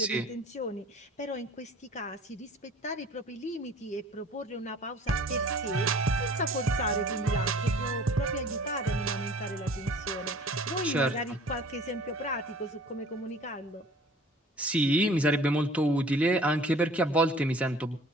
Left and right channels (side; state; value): both; normal; correlation 0.48